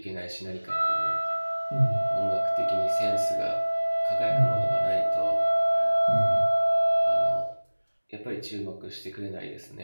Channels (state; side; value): inverted; both; correlation -1.00